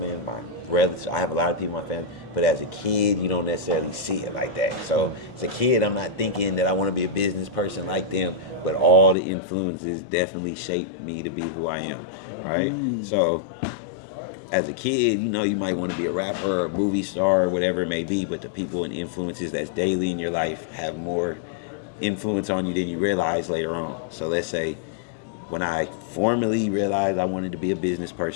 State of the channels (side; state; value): right; drops out; at 9.2 s